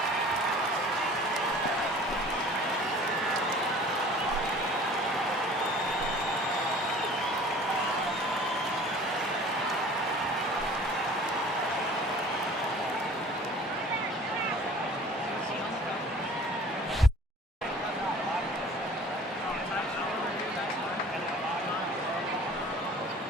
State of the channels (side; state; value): both; normal; correlation 0.47